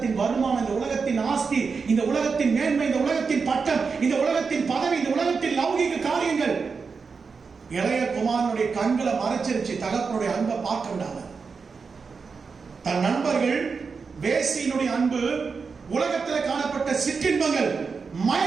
வருமானம், இந்த உலகத்தின் ஆஸ்தி, இந்த உலகத்தின் மேன்மை, இந்த உலகத்தின் பட்டம், இந்த உலகத்தின் பதவி, இந்த உலகத்தின் லௌகிக காரியங்கள் இளைய குமாரனுடைய கண்களை மறைச்சிருச்சு. தகப்பனுடைய அன்பை பார்க்க விடாம தன் நண்பர்கள், வேசியினுடைய அன்பு, உலகத்தில் காணப்பட்ட சிற்றின்பங்கள்,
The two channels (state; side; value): quieter; left; 5.1 dB